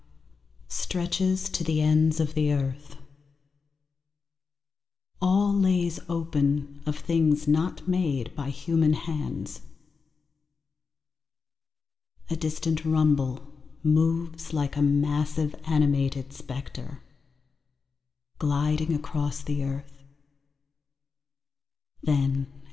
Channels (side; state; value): right; quieter; 5.1 dB